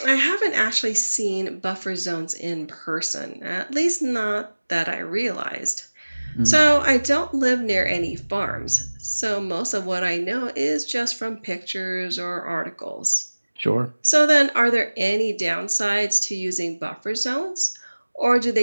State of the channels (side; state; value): both; inverted; correlation -1.00